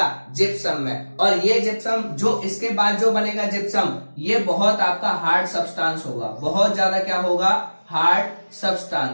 जिप्सम में। और ये जिप्सम जो इसके बाद जो बनेगा जिप्सम, ये बहुत आपका हार्ड सब्सटेंस होगा, बहुत ज्यादा क्या होगा, हार्ड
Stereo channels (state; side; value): inverted; both; correlation -1.00